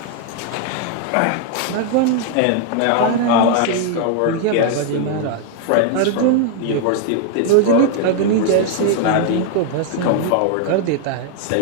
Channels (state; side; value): different; both; correlation 0.00